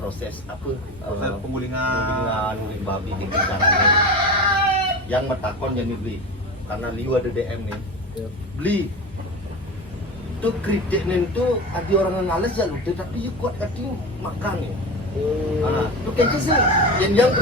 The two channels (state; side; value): normal; both; correlation 0.28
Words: apa? Proses Penggulingan guling babi di caranya. Yang metakon jadi beli. Karena liu ada DM nih. Beli itu kritik nih itu ada orang yang ngales ya lu tapi you kuat kati makan ya. Itu kayaknya sih yang